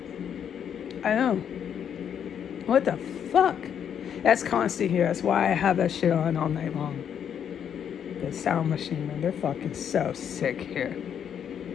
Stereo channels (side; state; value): right; quieter; 8.5 dB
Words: I know. What the fuck? That's constant here. That's why I have that shit on all night long. The sound machine, man. They're fucking so sick here.